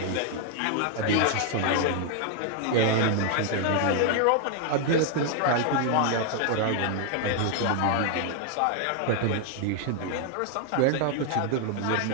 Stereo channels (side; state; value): both; different; correlation 0.00